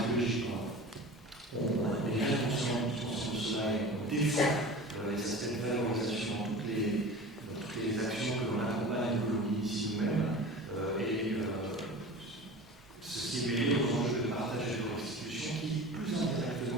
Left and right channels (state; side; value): normal; both; correlation 0.36